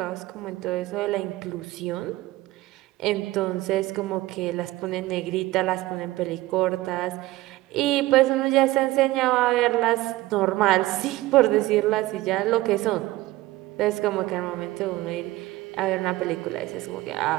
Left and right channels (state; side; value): quieter; left; 18.0 dB